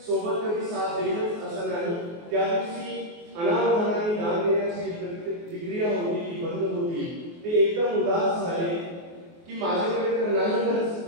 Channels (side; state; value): left; late; 24 ms